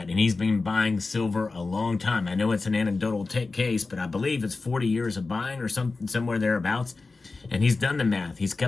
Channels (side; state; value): right; quieter; 3.8 dB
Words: and he's been buying silver a long time. I know it's an anecdotal case, but I believe it's 40 years of buying or somewhere thereabouts. And he's done the math. He's